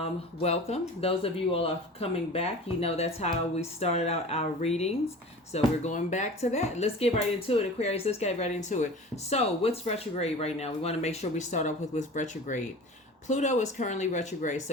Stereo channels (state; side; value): normal; both; correlation 0.38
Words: Those of you all are coming back, you know that's how we started out our readings. So we're going back to that. Let's get right into it, Aquarius. Let's get right into it. So what's retrograde right now? We want to make sure we start off with retrograde. Pluto is currently retrograde.